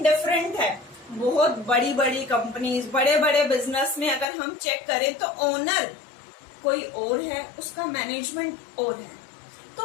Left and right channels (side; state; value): right; drops out; at 4.2 s